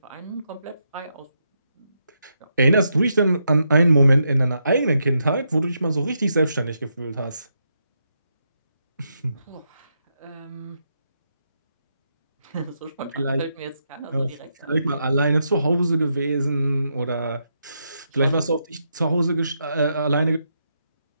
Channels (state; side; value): inverted; both; correlation -0.81